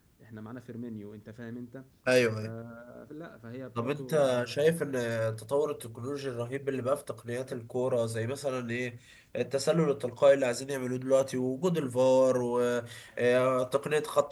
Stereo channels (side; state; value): both; identical; correlation 1.00